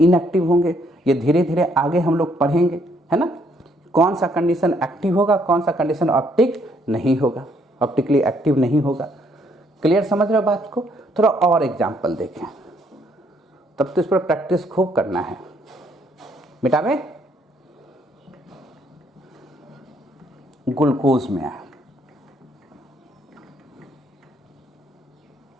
होंगे। ये धीरे धीरे आगे हम लोग पढ़ेंगे, है ना, कौन सा कंडीशन एक्टिव होगा, कौन सा कंडीशन ऑप्टिक नहीं होगा, ऑप्टिकली एक्टिव नहीं होगा। क्लियर समझ रहे हो बात को? थोड़ा और एग्जांपल देखें, तब तो इस पर प्रैक्टिस खूब करना है। मिटावे, ग्लूकोज में है,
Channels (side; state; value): both; normal; correlation 0.69